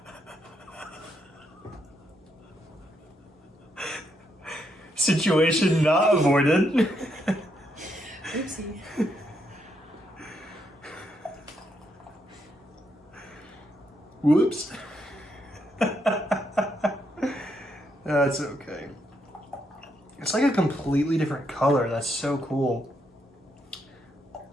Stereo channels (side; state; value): both; normal; correlation 0.78